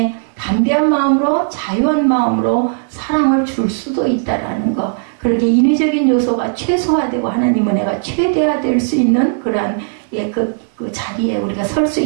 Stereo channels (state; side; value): silent; left; digital silence